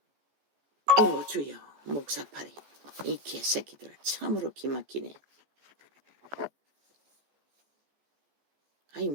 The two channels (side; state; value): left; late; 14 ms